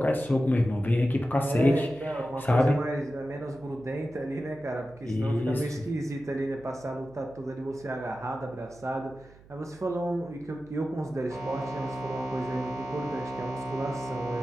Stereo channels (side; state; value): right; noise; hum, 23 dB below the sound